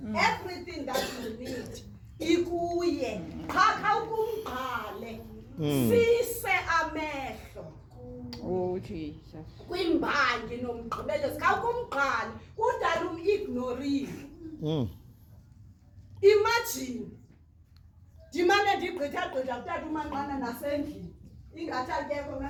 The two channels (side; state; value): both; identical; correlation 1.00